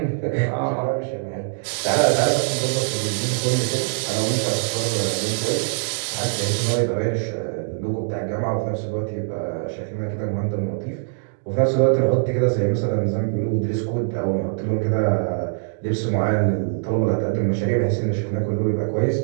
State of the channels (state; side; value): silent; left; digital silence